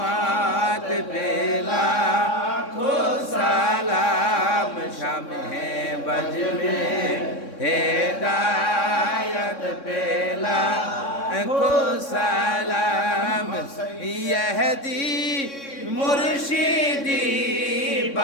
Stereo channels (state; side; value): late; right; 3.6 ms